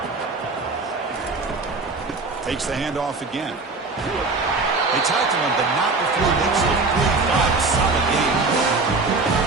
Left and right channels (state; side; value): quieter; left; 3.8 dB